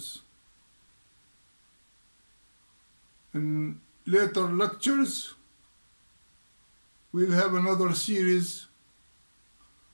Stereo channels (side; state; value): both; inverted; correlation -1.00